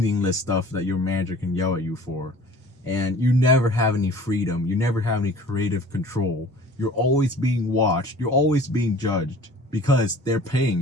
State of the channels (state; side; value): normal; both; correlation 0.47